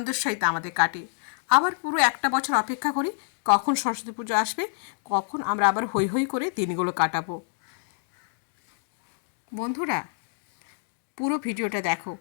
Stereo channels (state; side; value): silent; right; digital silence